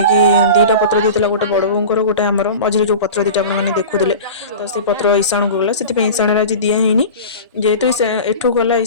2ଟା ପତ୍ର ଦେଇଥିଲା, ଗୋଟେ ବଡ଼ ବୋଉଙ୍କର, ଗୋଟେ ଆମର ମଝିରେ ଯେଉଁ ପତ୍ର ଦୁଇଟା ଆପଣମାନେ ଦେଖୁଥିଲେ। ତ ସେଇ ପତ୍ର ଇସାଣକୁ ଗଲା, ସେଥିପାଇଁ ଇସାଣରେ ଆଜି ଦିଆ ହେଇନି। ଯେହେତୁ ଏଠୁ ଗଲା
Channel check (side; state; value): both; inverted; correlation -0.33